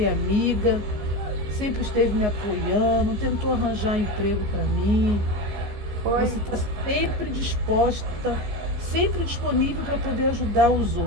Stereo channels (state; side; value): late; left; 14 ms